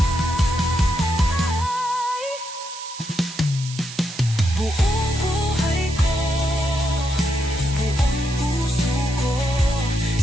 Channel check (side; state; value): right; noise; hiss, 12 dB below the sound